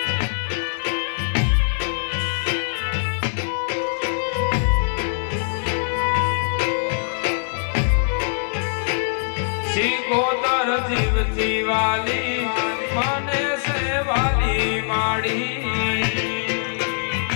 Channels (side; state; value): right; silent; 59 dB below the other